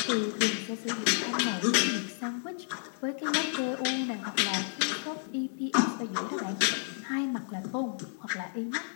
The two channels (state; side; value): silent; right; 57 dB below the other